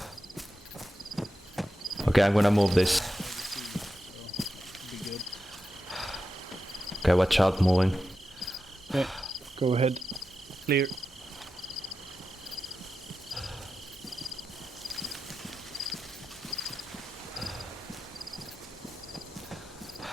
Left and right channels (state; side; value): normal; both; correlation 0.90